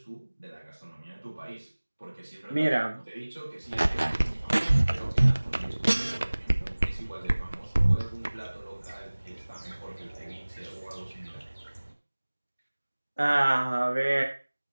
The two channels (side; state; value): both; inverted; correlation -1.00